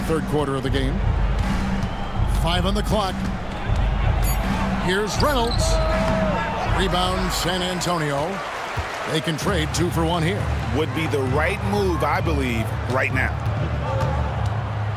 3rd quarter of the game. 5 on the clock. Here's Reynolds. Rebound San Antonio. They can trade 2 for 1 here. Would be the right move, I believe, right now.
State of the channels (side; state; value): both; identical; correlation 1.00